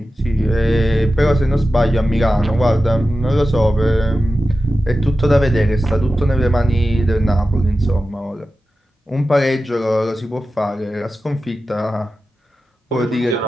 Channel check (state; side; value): normal; both; correlation 0.93